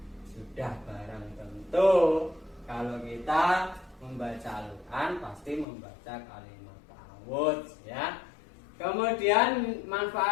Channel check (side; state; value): right; drops out; at 5.7 s